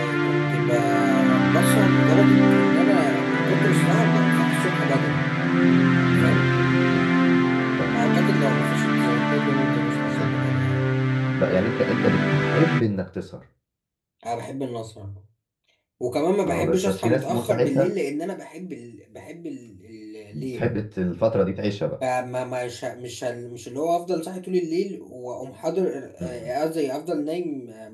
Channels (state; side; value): identical; both; correlation 1.00